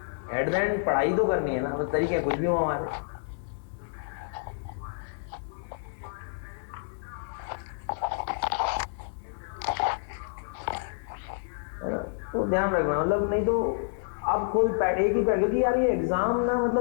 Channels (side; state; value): right; silent; 59 dB below the other